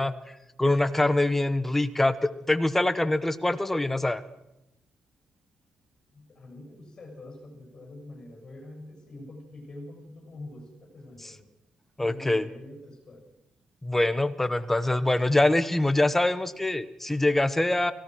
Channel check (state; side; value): normal; both; correlation 0.98